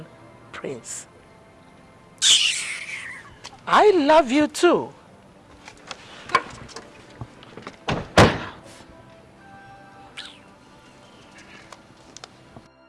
prince. I love you too.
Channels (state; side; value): identical; both; correlation 1.00